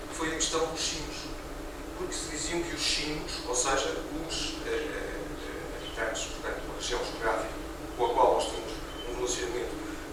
foi a questão dos chinos. Porque se diziam que os chinos, ou seja, os habitantes, portanto, uma região geográfica com a qual nós temos um relacionamento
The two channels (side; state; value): both; identical; correlation 1.00